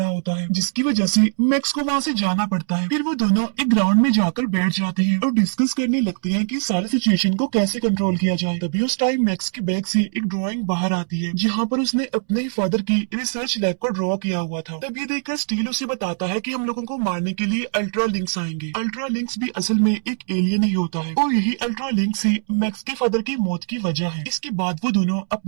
होता है, जिसकी वजह से मैक्स को वहाँ से जाना पड़ता है। फिर वो दोनों एक ग्राउंड में जाकर बैठ जाते हैं और डिस्कस करने लगते हैं कि सारी सिचुएशन को कैसे कंट्रोल किया जाए। तभी उस टाइम मैक्स के बैग से एक ड्राइंग बाहर आती है, जहाँ पर उसने अपने ही फादर की रिसर्च लैब को ड्रॉ किया हुआ था। तब ये देखकर स्टील उसे बताता है कि हम लोगों को मारने के लिए अल्ट्रा लिंक्स आएंगे। अल्ट्रा लिंक्स भी असल में एक एलियन ही होता है और यही अल्ट्रा लिंक्स ही मैक्स के फादर की मौत की वजह है। इसके बाद वो दोनों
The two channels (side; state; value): left; silent; 64 dB below the other